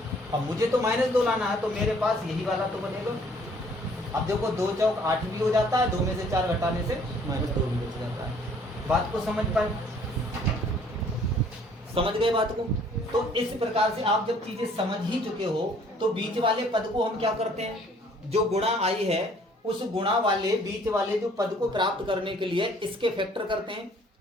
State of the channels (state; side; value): normal; both; correlation 0.58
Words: अब मुझे तो -2 लाना है, तो मेरे पास यही वाला तो बनेगा। अब देखो 2 चौक 8 भी हो जाता है, 2 में से 4 घटाने से -2 भी बच जाता है। बात को समझ पाए? समझ गए बात को? तो इस प्रकार से आप जब चीजें समझ ही चुके हो तो बीच वाले पद को हम क्या करते हैं? जो गुणा आई है उस गुणा वाले बीच वाले जो पद को प्राप्त करने के लिए इसके फैक्टर करते हैं,